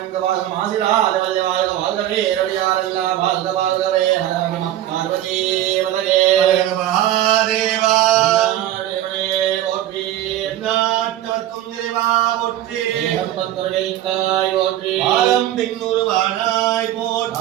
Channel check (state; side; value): quieter; left; 13.0 dB